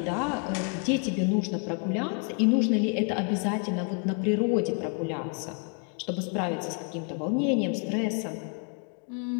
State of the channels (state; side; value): quieter; right; 38.9 dB